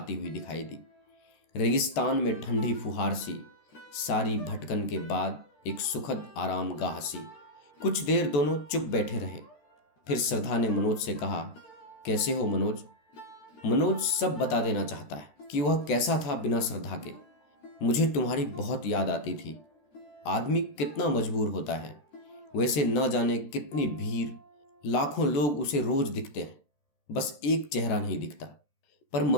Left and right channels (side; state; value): right; late; 13 ms